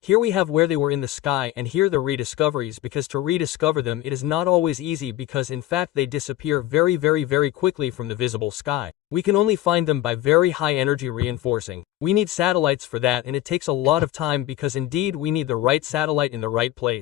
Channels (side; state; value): right; quieter; 14.4 dB